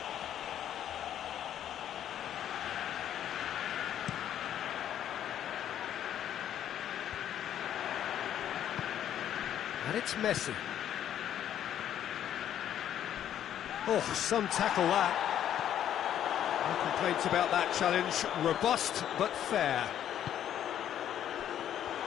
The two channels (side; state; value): right; quieter; 10.6 dB